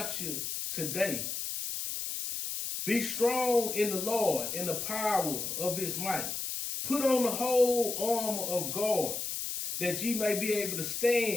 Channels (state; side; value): noise; left; hiss, 4 dB below the sound